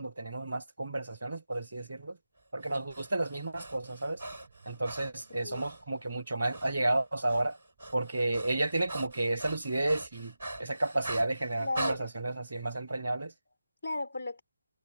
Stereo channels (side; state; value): both; inverted; correlation -0.93